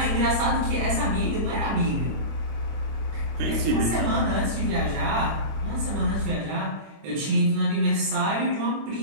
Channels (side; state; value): left; late; 25 ms